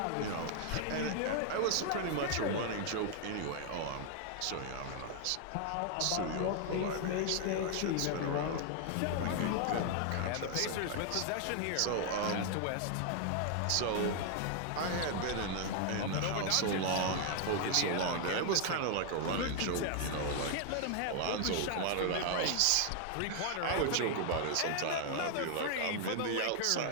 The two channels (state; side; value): different; both; correlation 0.00